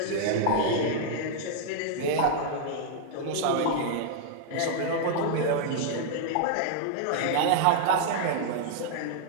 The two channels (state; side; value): different; both; correlation -0.01